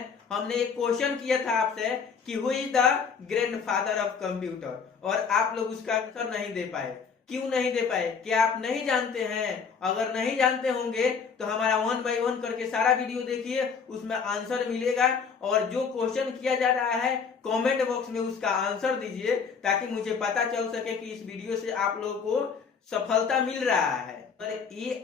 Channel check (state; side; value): quieter; right; 5.9 dB